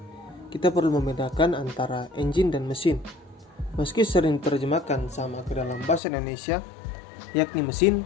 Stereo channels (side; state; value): right; drops out; at 6.0 s